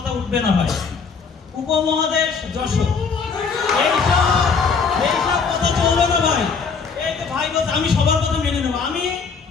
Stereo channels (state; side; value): quieter; right; 5.3 dB